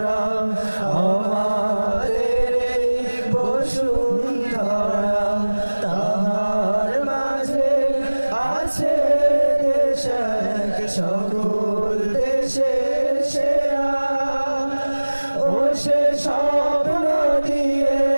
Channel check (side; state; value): both; inverted; correlation -1.00